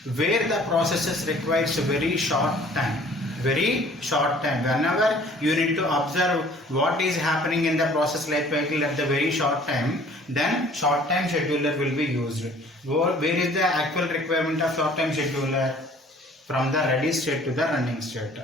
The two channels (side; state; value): both; normal; correlation 0.53